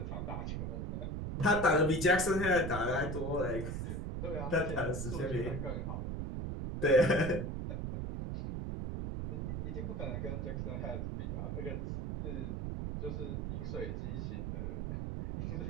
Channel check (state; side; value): noise; right; rumble, 3 dB below the sound